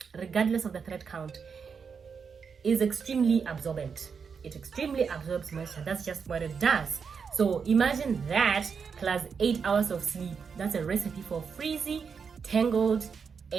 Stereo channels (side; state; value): left; quieter; 6.0 dB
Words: is extremely absorbent. It extremely absorbs moisture. That's just what it does. So imagine that plus 8 hours of sleep. That's a recipe for frizzy, tangled,